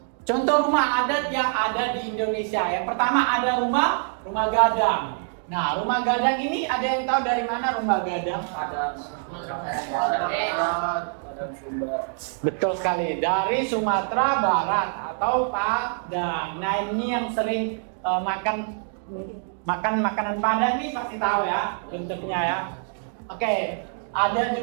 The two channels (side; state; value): left; silent; 60 dB below the other